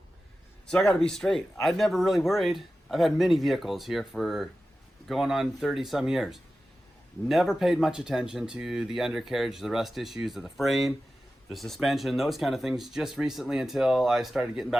So I got to be straight. I've never really worried. I've had many vehicles here for going on 30 some years. Never paid much attention to the undercarriage, the rust issues of the frame, the suspension, those kind of things, just recently until I started getting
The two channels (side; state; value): both; normal; correlation 0.94